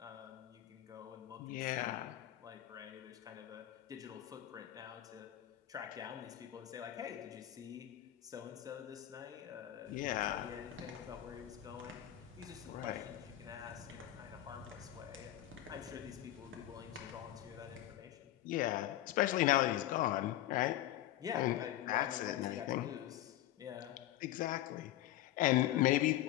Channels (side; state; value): right; quieter; 13.8 dB